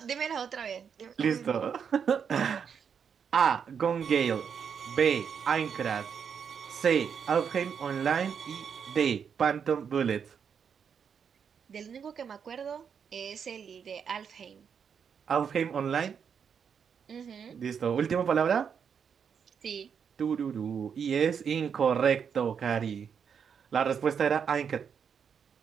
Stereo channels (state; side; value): quieter; left; 7.1 dB